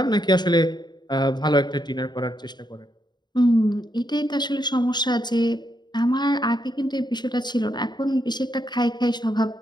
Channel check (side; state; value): right; late; 0.21 ms